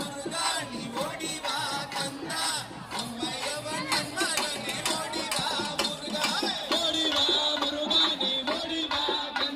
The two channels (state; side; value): identical; both; correlation 1.00